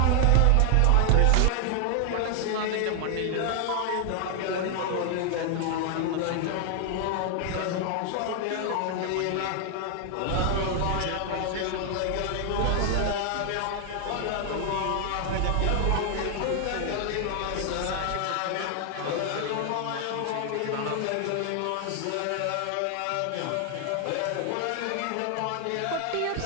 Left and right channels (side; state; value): both; different; correlation 0.00